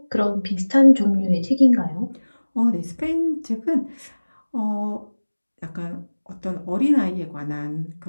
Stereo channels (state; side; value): inverted; both; correlation -1.00